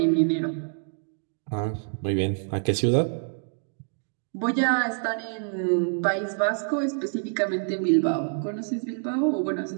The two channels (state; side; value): silent; left; 60 dB below the other